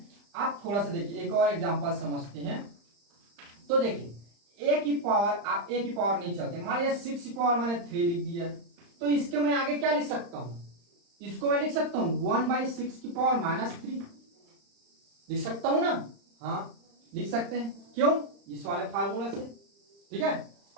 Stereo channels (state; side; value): late; left; 35 ms